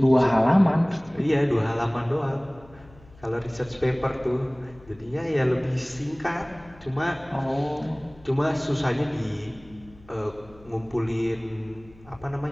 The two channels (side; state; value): left; noise; hum, 24 dB below the sound